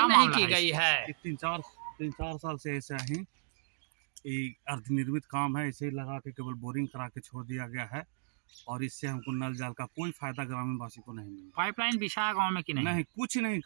नहीं की गई है। तीन चार साल से ऐसा ही अर्धनिर्मित काम है, इसे लगा के केवल बोरिंग करा के छोड़ दिया गया है और इससे हमको नल जल का कोई फायदा ग्रामीण वासी को नहीं मिला। पाइपलाइन बिछा गांव में कि नहीं? नहीं, कुछ नहीं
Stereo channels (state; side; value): silent; left; digital silence